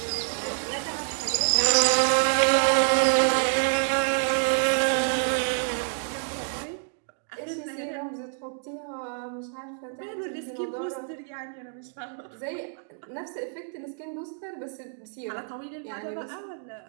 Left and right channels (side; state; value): left; silent; digital silence